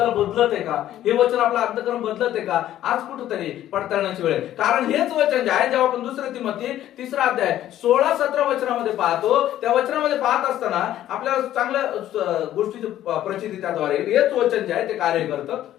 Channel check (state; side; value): quieter; right; 12.6 dB